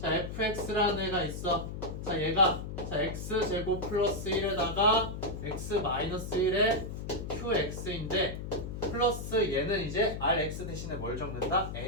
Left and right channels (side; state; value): left; noise; hum, 7 dB below the sound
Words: fx라는 애가 있어. 자, 얘가 자, x제곱 플러스 1에다가 x 마이너스 1에 qx인데 플러스 얘는 이제 rx 대신에 뭘 적는다?